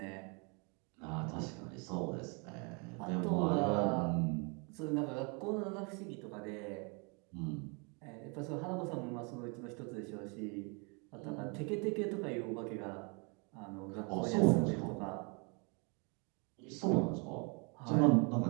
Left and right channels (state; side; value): quieter; left; 33.1 dB